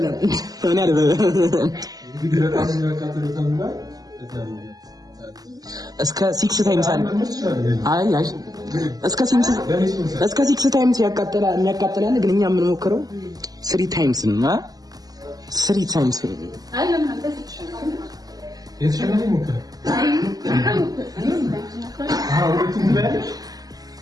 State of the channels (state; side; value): late; left; 0.18 ms